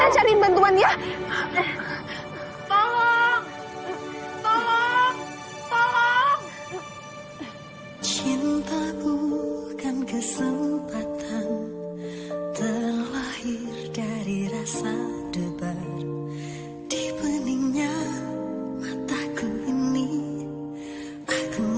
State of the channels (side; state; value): both; identical; correlation 1.00